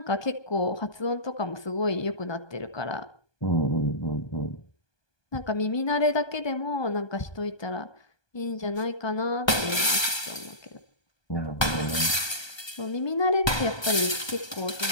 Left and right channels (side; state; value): right; late; 1.2 ms